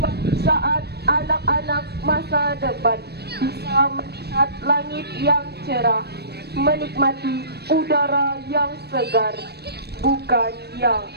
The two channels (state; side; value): late; left; 0.47 ms